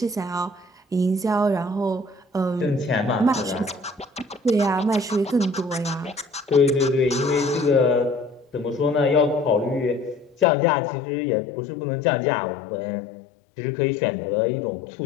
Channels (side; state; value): right; drops out; at 10.5 s